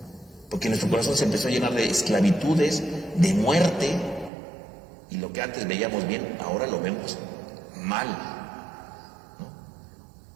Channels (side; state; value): left; drops out; at 4.3 s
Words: Porque nuestro corazón se empezó a llenar de esclavitudes, de muerte, y lo que antes veíamos bien, ahora lo vemos mal, ¿no?